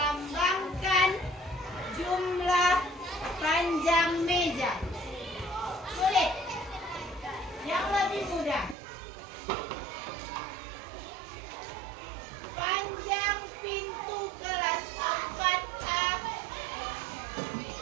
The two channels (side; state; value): left; drops out; at 8.8 s